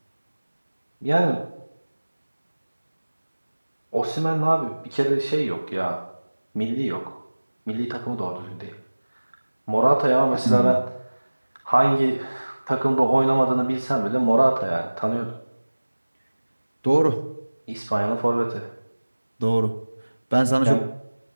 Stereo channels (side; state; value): both; inverted; correlation -1.00